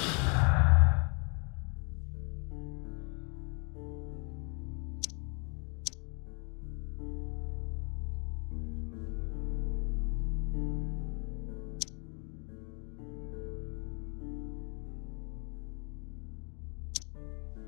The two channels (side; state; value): right; quieter; 35.3 dB